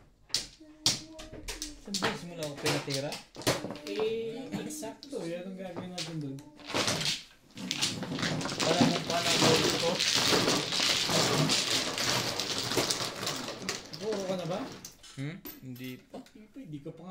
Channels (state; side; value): identical; both; correlation 1.00